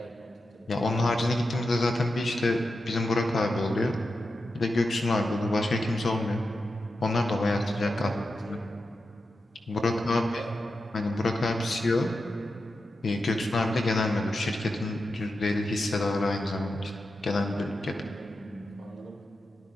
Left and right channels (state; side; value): normal; both; correlation 0.89